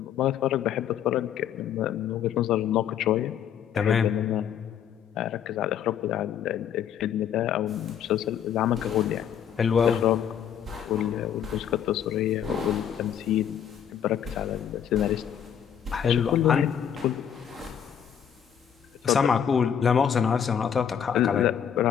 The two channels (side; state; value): right; quieter; 8.9 dB